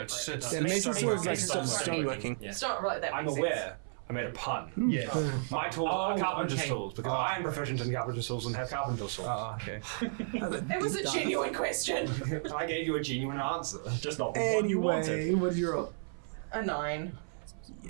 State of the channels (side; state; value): left; silent; 56 dB below the other